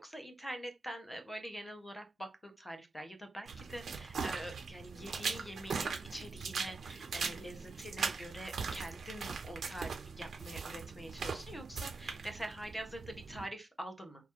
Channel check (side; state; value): left; quieter; 3.3 dB